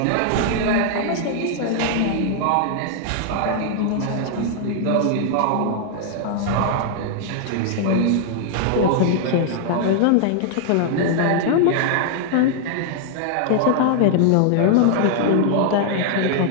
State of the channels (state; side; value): different; both; correlation 0.00